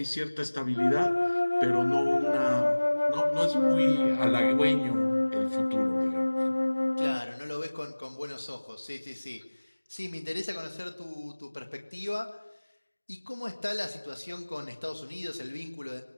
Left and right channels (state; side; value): inverted; both; correlation -1.00